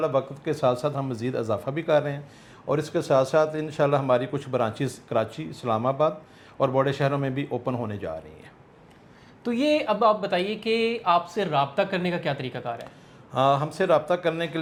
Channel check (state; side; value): identical; both; correlation 1.00